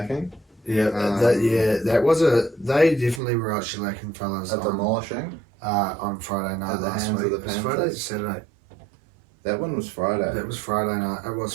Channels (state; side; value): drops out; left; at 3.2 s